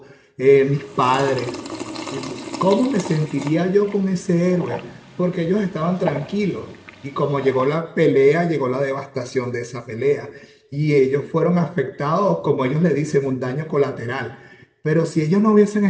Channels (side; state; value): both; identical; correlation 1.00